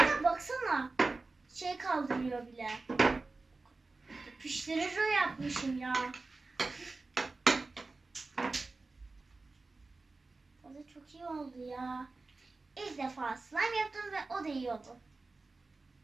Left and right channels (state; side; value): quieter; left; 3.6 dB